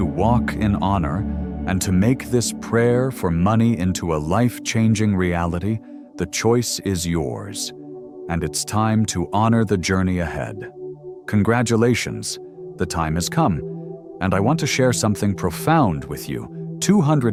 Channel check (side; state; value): both; identical; correlation 1.00